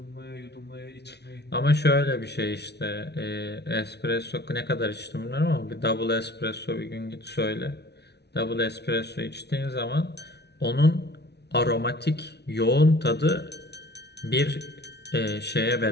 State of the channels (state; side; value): late; right; 0.49 ms